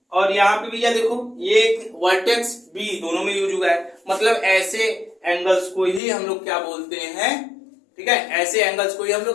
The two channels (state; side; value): drops out; right; at 6.0 s